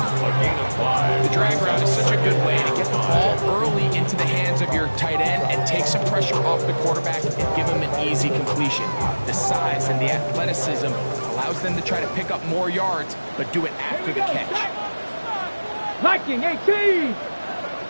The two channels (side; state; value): both; inverted; correlation -1.00